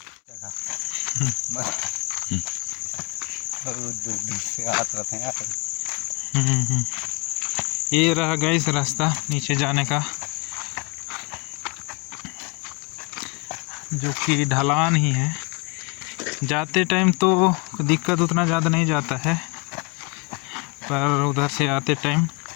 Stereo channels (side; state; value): right; quieter; 29.9 dB